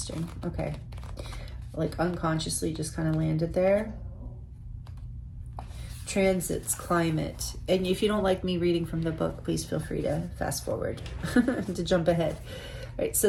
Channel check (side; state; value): both; identical; correlation 1.00